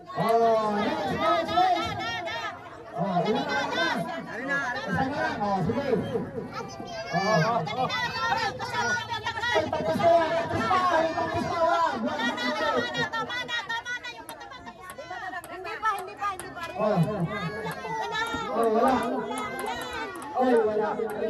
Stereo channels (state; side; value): identical; both; correlation 1.00